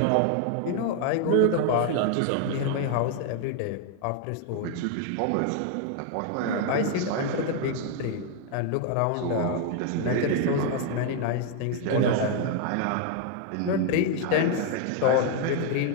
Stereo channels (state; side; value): different; both; correlation 0.00